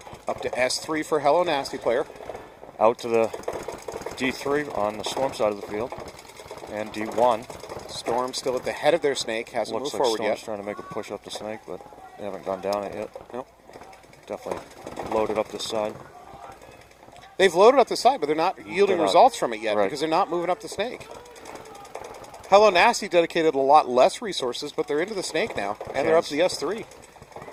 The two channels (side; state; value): both; identical; correlation 1.00